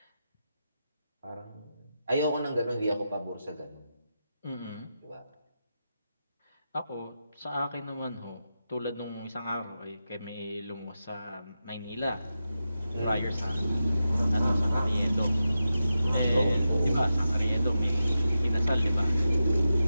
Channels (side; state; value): both; inverted; correlation -0.90